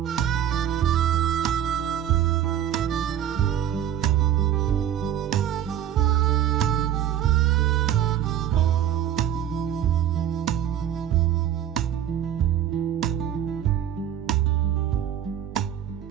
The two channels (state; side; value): quieter; left; 10.5 dB